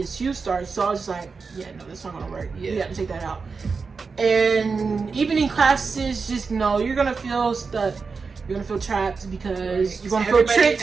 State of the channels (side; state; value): left; quieter; 4.8 dB